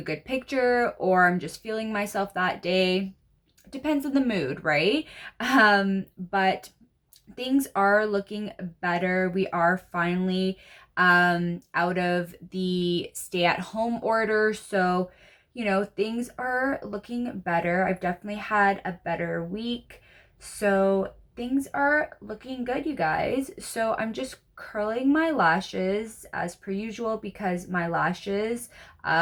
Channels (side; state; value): both; identical; correlation 1.00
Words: good picture or I'm just feeling myself that day. Depends on the mood, right? But things are looking better. We are finally out of the stay at home order. So, things are looking better. I've definitely had a better week. So, things are looking good, you guys. So, I'm just curling my lashes as per usual because my lashes